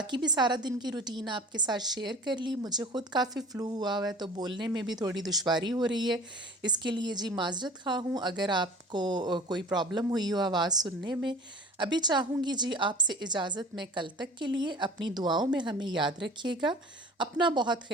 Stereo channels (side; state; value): both; normal; correlation 0.42